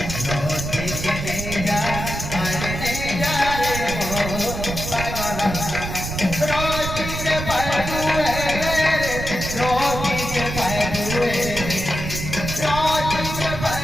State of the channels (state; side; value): noise; right; rumble, 6 dB below the sound